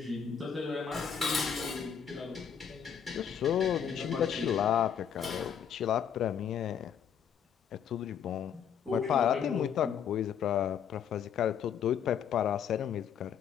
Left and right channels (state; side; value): quieter; right; 8.0 dB